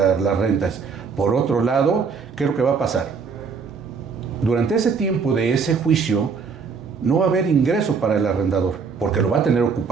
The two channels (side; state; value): left; quieter; 5.5 dB